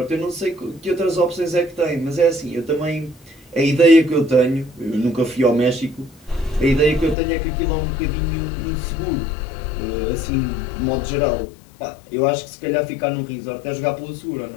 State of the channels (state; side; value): drops out; right; at 7.2 s